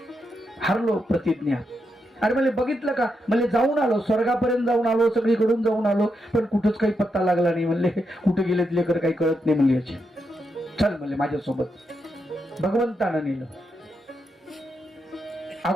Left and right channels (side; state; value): both; normal; correlation 0.83